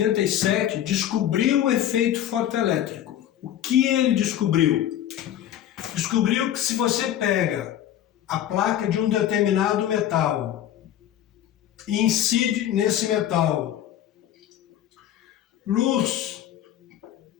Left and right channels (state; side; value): quieter; right; 11.3 dB